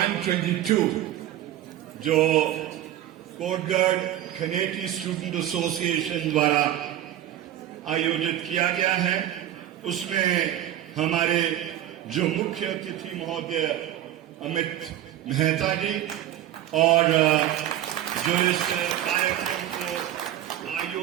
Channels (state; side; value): quieter; left; 12.4 dB